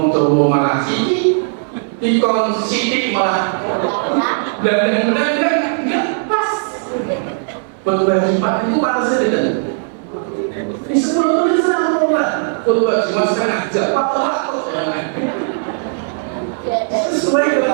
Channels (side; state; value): left; silent; digital silence